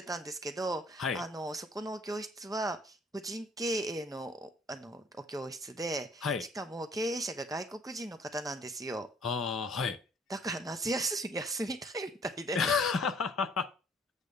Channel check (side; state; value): both; normal; correlation 0.59